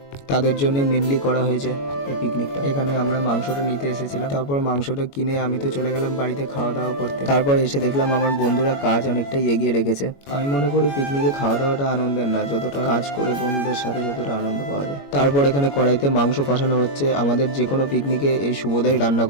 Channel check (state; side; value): late; right; 21 ms